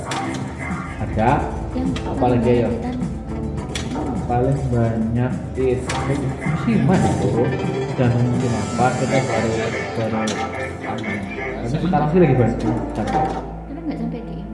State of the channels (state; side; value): identical; both; correlation 1.00